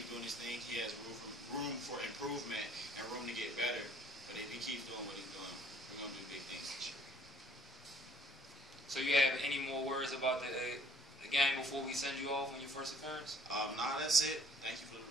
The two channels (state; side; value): normal; both; correlation 0.58